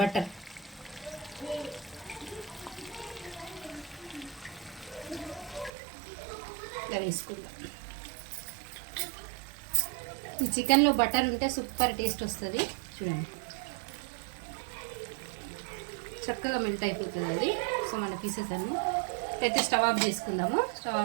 ఇలా వేసుకుందాం. ఈ చికెన్లో బటర్ ఉంటే సూపర్ టేస్ట్ వస్తుంది. చూడండి చక్కగా మెల్ట్ అయిపోతుంది అది. సో మన పీసెస్ అన్నీ అయితే స్టవ్ ఆఫ్ చేసుకుందాము. స్టవ్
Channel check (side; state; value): left; drops out; at 5.7 s